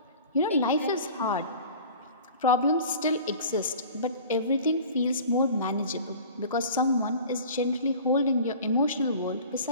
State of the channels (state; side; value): inverted; both; correlation -0.42